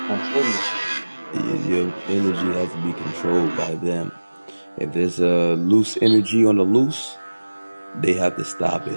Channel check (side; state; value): both; inverted; correlation -1.00